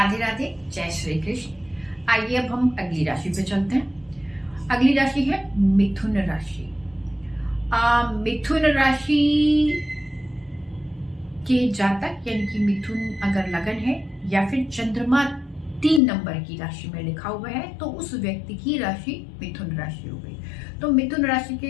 राधे, जय श्री कृष्ण। आइए अब हम अगली राशि पे चलते हैं। अगली राशि है मिथुन राशि। मिथुन राशि के जातक यानी कि मिथुन अगर लगन है या फिर चंद्रमा 3 नंबर की राशि में लिखा हुआ है तो उस व्यक्ति की राशि मिथुन राशि हो गई। तो मिथुन राशि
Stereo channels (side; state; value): right; drops out; at 16.0 s